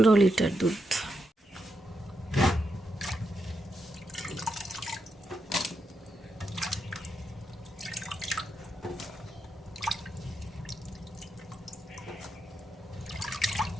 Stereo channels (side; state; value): both; normal; correlation 0.83